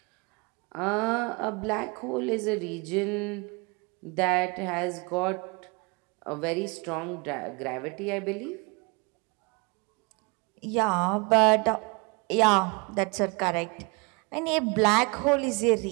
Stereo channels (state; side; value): quieter; left; 29.8 dB